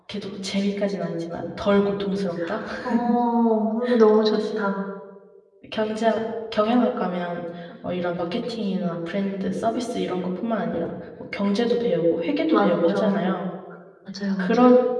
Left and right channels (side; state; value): both; identical; correlation 1.00